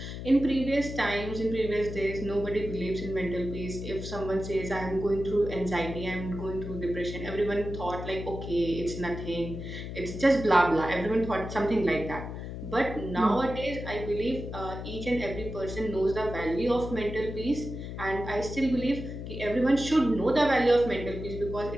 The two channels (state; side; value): noise; left; hum, 8 dB below the sound